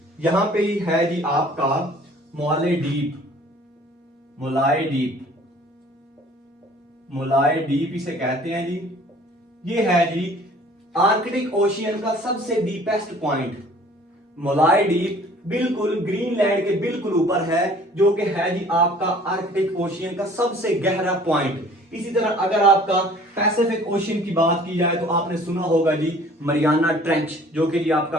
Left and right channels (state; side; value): normal; both; correlation 0.52